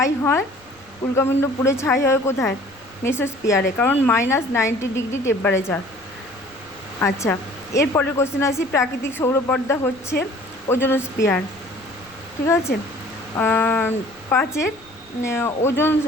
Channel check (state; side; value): noise; left; rumble, 30 dB below the sound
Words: হয় কোথায়? মেসোস্ফিয়ারে, কারণ -90 ডিগ্রি টেম্পারেচার। আচ্ছা, এরপরের কোশ্চেন আসি। প্রাকৃতিক সৌরপর্দা হচ্ছে ওজোনোস্ফিয়ার। ঠিক আছে। 5 ওজন